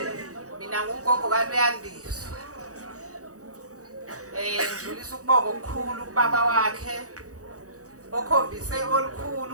Mina ngugogo kaLuyandiswa. Ngidlulisa ukubonga okukhulu kubaba wakhe okhombise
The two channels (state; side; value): late; left; 0.66 ms